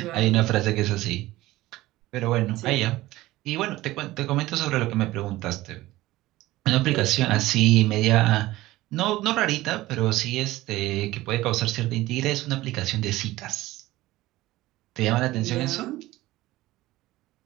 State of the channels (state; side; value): quieter; left; 17.4 dB